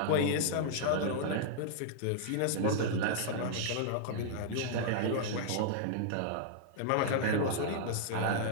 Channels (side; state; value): both; different; correlation -0.01